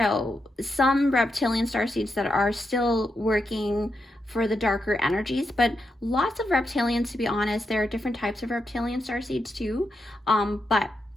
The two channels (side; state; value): both; normal; correlation 0.85